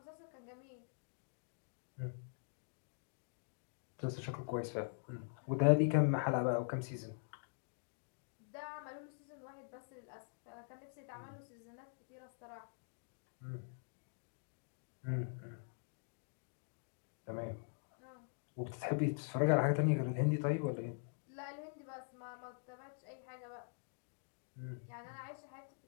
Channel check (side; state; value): right; silent; digital silence